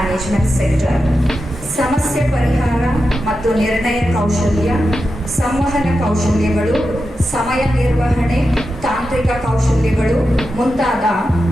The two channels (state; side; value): normal; both; correlation 0.90